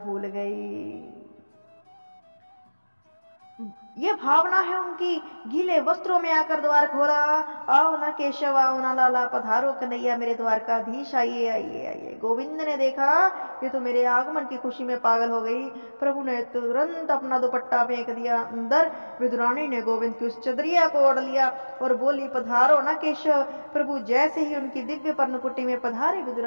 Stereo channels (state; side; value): inverted; both; correlation -1.00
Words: भूल गई। ये भावना है उनकी। गीले वस्त्रों में आकर द्वार खोला, आओ ना केशव, आओ ना लाला, पधारो कन्हैया मेरे द्वारकाधीश, आइए आइए आइए। गोविंद ने देखा ये तो मेरे आगमन की खुशी में पागल हो गई। प्रभु ने तुरंत अपना दुपट्टा फेंक दिया अंदर। विदुरानी ने गोविंद की उस चदरिया को ओढ़ लिया और बोली, पधारो ना केशव। प्रभु जैसे ही उनकी दिव्य पर्णकुटी में पधारे,